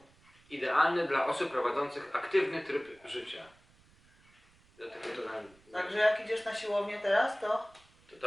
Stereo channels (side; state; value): right; noise; rumble, 30 dB below the sound